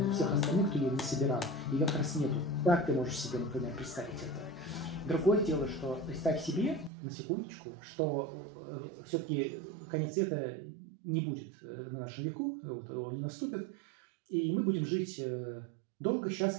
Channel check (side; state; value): left; drops out; at 6.9 s